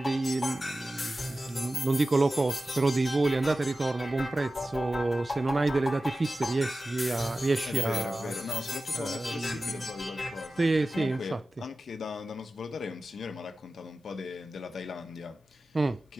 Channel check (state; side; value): normal; both; correlation 0.95